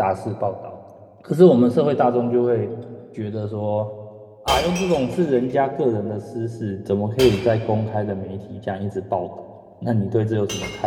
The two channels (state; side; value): identical; both; correlation 1.00